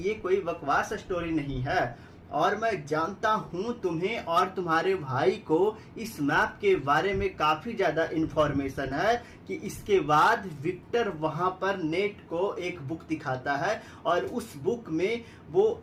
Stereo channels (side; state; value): both; identical; correlation 1.00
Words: ये कोई बकवास स्टोरी नहीं है और मैं जानता हूं तुम्हें और तुम्हारे भाई को इस मैप के बारे में काफी ज्यादा इंफॉर्मेशन है। कि इसके बाद विक्टर वहां पर नेट को एक बुक दिखाता है और उस बुक में वो